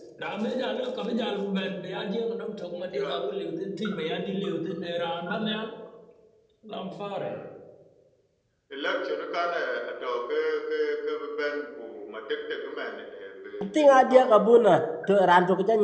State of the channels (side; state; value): both; identical; correlation 1.00